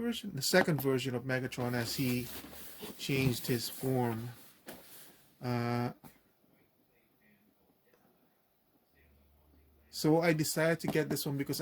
the second version of Megatron as he changed his form. So I decided to get this one because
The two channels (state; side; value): identical; both; correlation 1.00